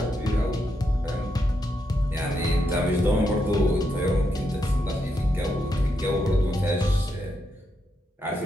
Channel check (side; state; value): both; normal; correlation 0.82